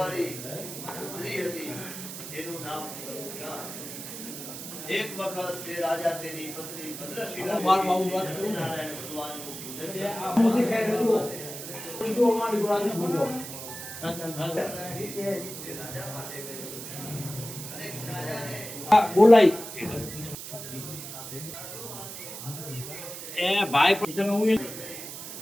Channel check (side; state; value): right; noise; hiss, 9 dB below the sound